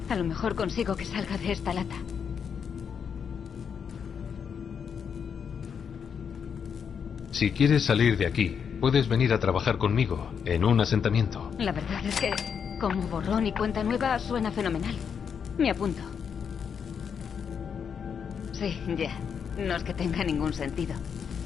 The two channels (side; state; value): right; quieter; 7.1 dB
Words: A lo mejor consigo que salga de esta lata. Si quieres salir de aquí, puedes venir a trabajar conmigo en un asentamiento. La verdad es que, como borrón y cuenta nueva, suena fenomenal. Me apunto. Sí, ya. No es que tenga ningún sentido.